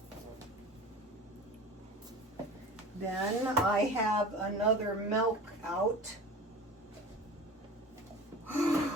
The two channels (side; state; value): both; normal; correlation 0.37